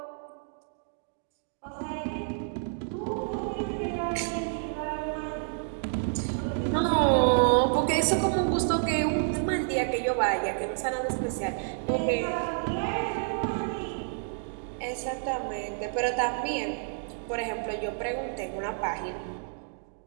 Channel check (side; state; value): left; silent; digital silence